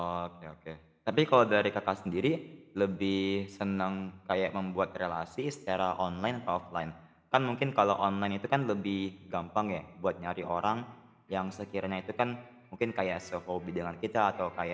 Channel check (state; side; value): identical; both; correlation 1.00